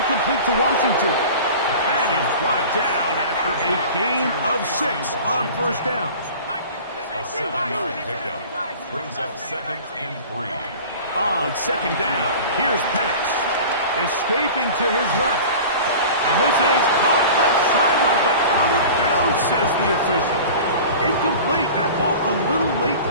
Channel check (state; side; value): inverted; both; correlation -0.38